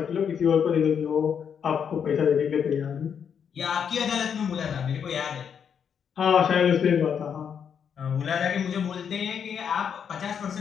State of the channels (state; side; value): quieter; right; 7.5 dB